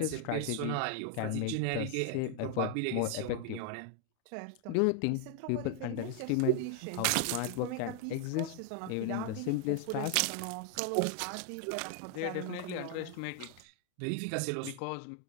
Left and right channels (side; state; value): both; different; correlation 0.00